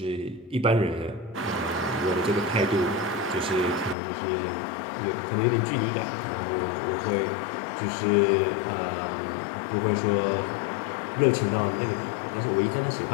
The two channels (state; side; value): drops out; right; at 4.0 s